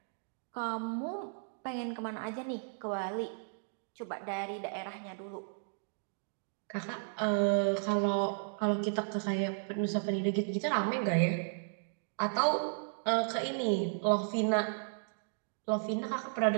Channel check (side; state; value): left; silent; digital silence